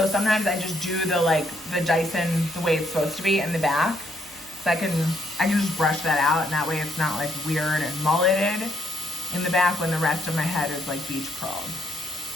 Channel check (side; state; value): right; noise; hum, 27 dB below the sound